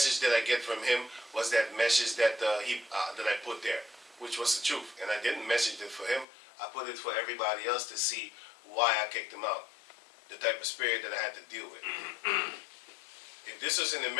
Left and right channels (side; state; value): right; drops out; at 6.2 s